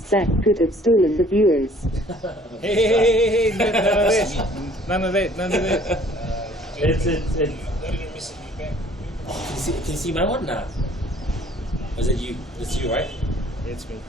Zach could have stolen the viewers. Hey, none of that. It's. Can you see my one now? Was it you? It's you, right? It's me.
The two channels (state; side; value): normal; both; correlation 0.56